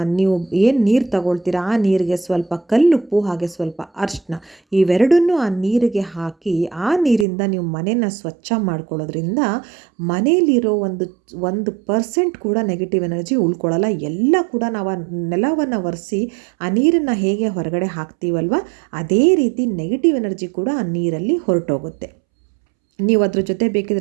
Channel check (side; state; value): left; drops out; at 7.2 s